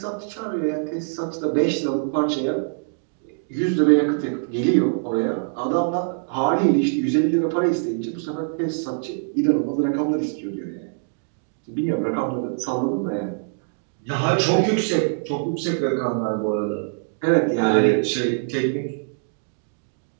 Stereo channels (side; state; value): left; silent; digital silence